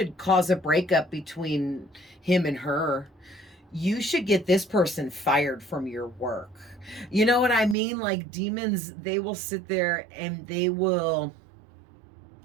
cause a breakup between him and her. You should get this person fired from your work. You know what I mean? Like demons, they will sit there and they will,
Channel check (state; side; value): drops out; left; at 7.8 s